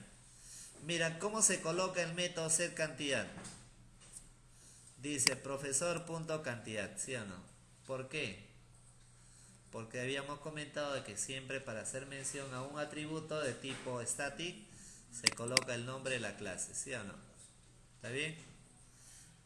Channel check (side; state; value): both; identical; correlation 1.00